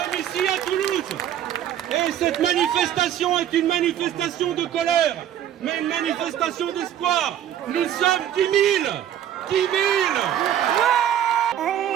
ici à Toulouse. Et cette manifestation est une manifestation de colère, mais une manifestation d'espoir. Nous sommes 10 000. 10 000.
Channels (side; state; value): left; quieter; 10.7 dB